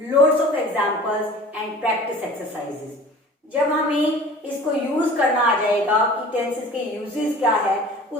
loads of examples and practice exercises. जब हमें इसको यूज करना आ जाएगा कि टेंसेस के यूजेस क्या है,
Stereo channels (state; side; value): normal; both; correlation 0.44